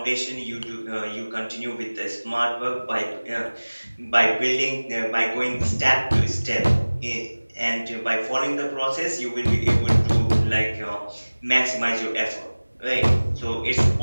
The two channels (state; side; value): inverted; both; correlation -1.00